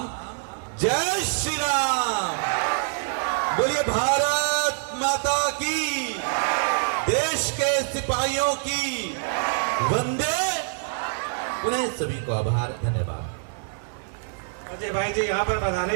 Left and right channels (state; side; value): silent; left; 60 dB below the other